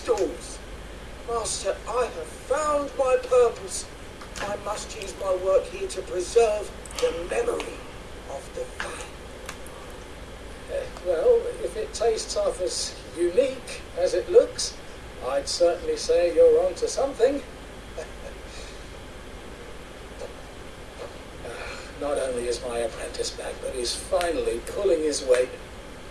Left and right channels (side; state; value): both; identical; correlation 1.00